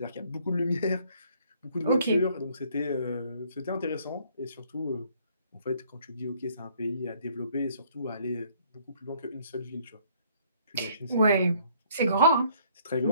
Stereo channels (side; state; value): both; inverted; correlation -0.62